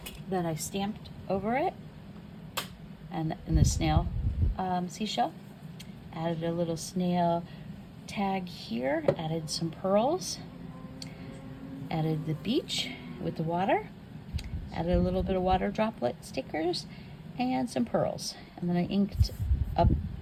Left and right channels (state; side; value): identical; both; correlation 1.00